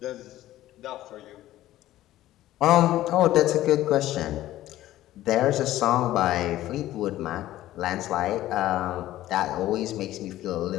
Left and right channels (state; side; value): quieter; right; 14.6 dB